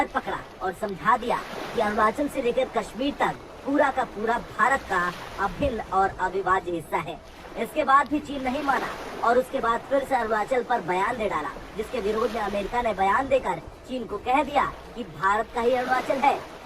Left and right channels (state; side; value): identical; both; correlation 1.00